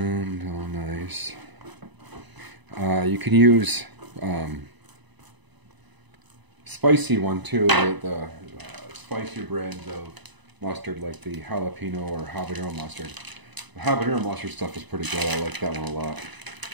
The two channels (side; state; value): left; late; 1.0 ms